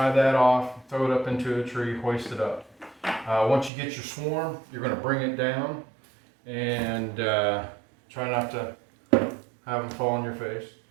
that off, throw it up into a tree, hoist it up. Once you get your swarm, you're going to bring it down and try not to have them fall on your face.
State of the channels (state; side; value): drops out; left; at 3.7 s